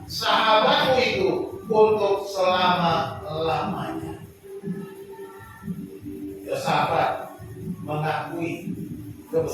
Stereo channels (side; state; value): both; identical; correlation 1.00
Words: sahabat-Mu itu untuk selama-lamanya. Yosafat mengakui